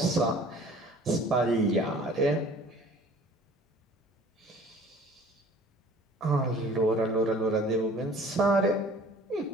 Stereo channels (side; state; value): both; normal; correlation 0.50